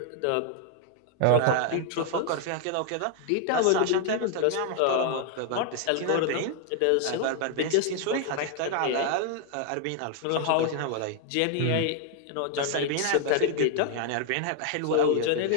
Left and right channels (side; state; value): both; different; correlation 0.00